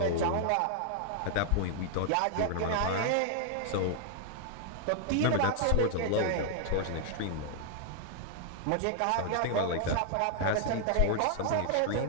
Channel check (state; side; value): different; both; correlation 0.00